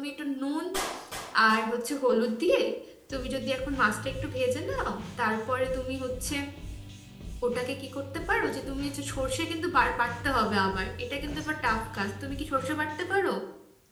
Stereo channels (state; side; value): identical; both; correlation 1.00